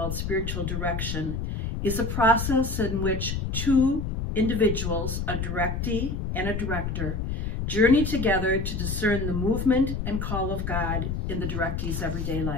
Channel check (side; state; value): left; noise; rumble, 3 dB below the sound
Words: spiritual direction, is a process in which two individuals, a directee and a director, journey together to discern the movement and call of God in the directee's everyday